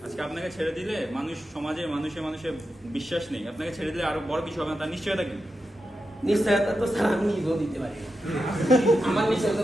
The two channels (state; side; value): normal; both; correlation 0.89